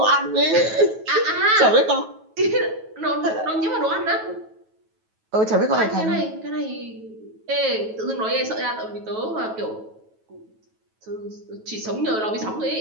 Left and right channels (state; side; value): late; left; 9.2 ms